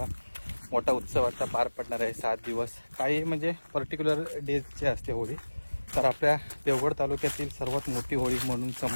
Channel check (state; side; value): inverted; both; correlation -1.00